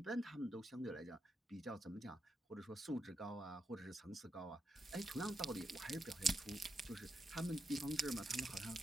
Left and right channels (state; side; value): normal; both; correlation 0.85